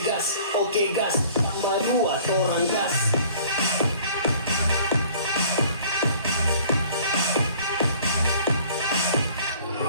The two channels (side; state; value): both; inverted; correlation -0.51